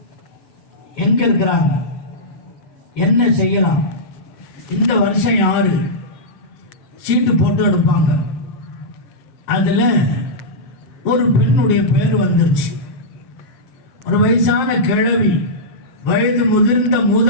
எங்க இருக்கிறாங்க, என்ன செய்யலாம், இந்த வருஷம் யாரு சீட்டு போட்டு எடுப்பாங்க. அதுல ஒரு பெண்ணுடைய பேர் வந்துருச்சு. ஒரு வயசான கிழவி, வயது முதிர்ந்த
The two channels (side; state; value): right; late; 7.6 ms